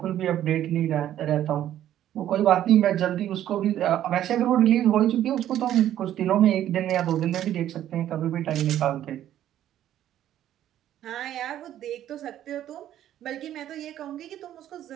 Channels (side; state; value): left; quieter; 11.8 dB